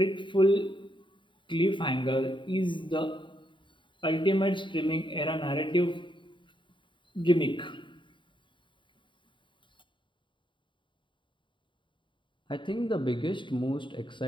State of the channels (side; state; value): right; late; 0.23 ms